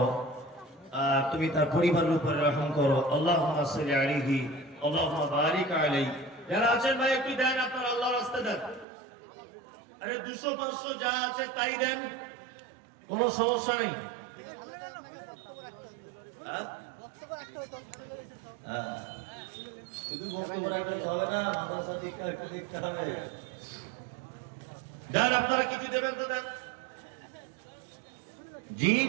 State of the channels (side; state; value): left; drops out; at 8.8 s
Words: তুমি তার পরিবারের উপরে রহম করো। আল্লাহুম্মা সাল্লি আলাইহি, আল্লাহুম্মা বারিক আলাইহি। যারা আছেন ভাই একটু দেন, আপনারা আল্লাহর রাস্তায় দেন। আরে 200-500 যা আছে তাই দেন, কোনো সমস্যা নেই। শুধু বক্তব্য রাখতে হবে না, মাদ্রাসা দিকটা একটু দেখতে হবে। দেন, আপনারা কিছু দেবেন তো দেন। জি